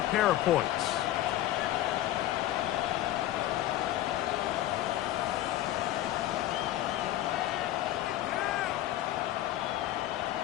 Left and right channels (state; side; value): quieter; right; 13.9 dB